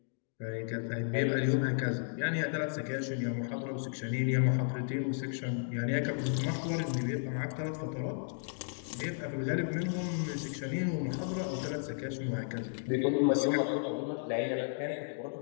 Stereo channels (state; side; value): silent; right; digital silence